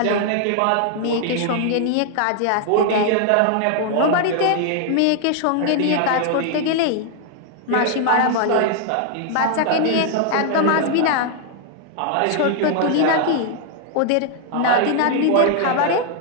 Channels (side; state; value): both; different; correlation 0.00